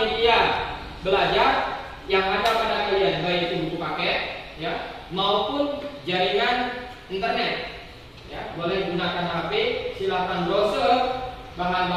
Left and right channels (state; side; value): identical; both; correlation 1.00